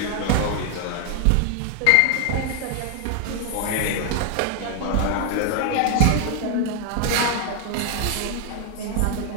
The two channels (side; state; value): both; different; correlation 0.00